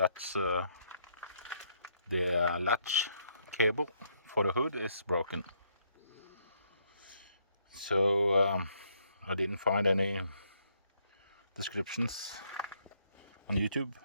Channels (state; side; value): inverted; both; correlation -0.71